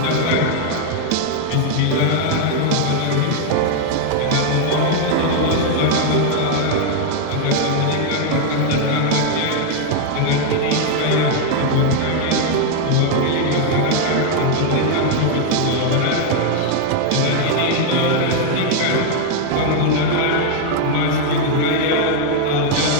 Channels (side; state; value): both; different; correlation 0.00